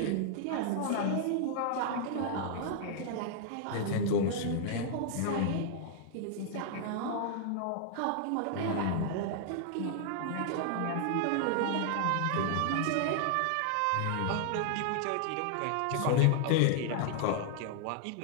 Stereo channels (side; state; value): both; different; correlation -0.01